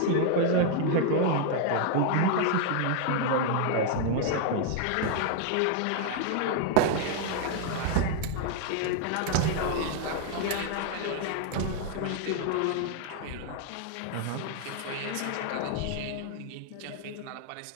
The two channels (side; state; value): both; different; correlation 0.00